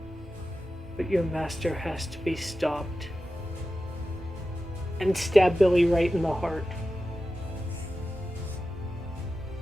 but your master has to be stopped. And stab Billy right in the heart.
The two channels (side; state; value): both; normal; correlation 0.93